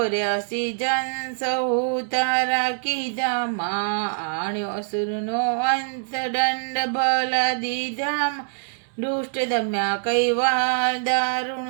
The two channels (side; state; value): left; silent; 63 dB below the other